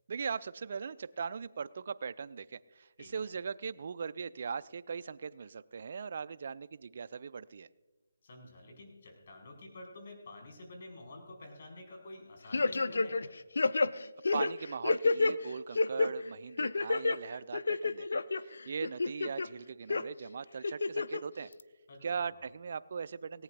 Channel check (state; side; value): inverted; both; correlation -0.89